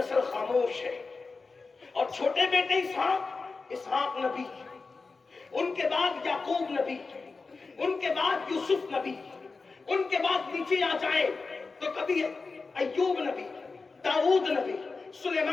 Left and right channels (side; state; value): right; quieter; 4.2 dB